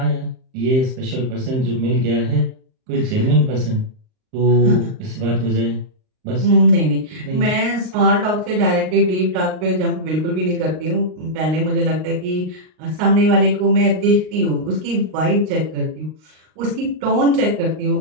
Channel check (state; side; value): late; left; 38 ms